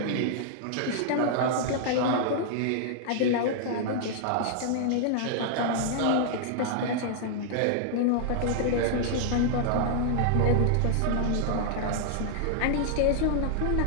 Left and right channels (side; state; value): both; different; correlation -0.01